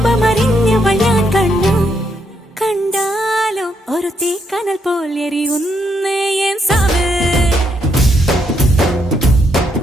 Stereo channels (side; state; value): both; normal; correlation 0.76